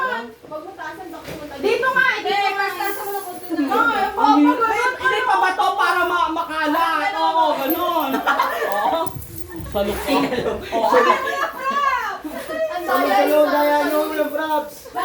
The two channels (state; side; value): identical; both; correlation 1.00